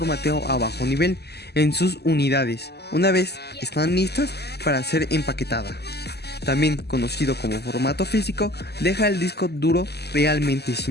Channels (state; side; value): late; right; 0.48 ms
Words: a bajo nivel en sus unidades, una vez están listas para ser empaquetadas. También conocido como formato físico, deja el disco duro realmente